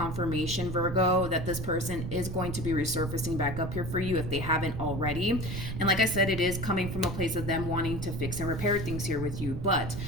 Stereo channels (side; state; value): right; noise; rumble, 5 dB below the sound